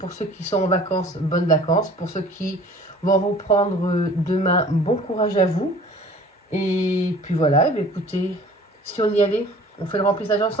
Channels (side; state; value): both; normal; correlation 0.48